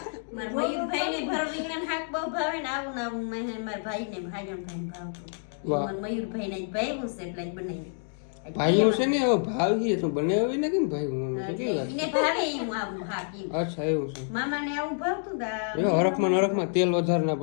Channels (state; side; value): silent; right; digital silence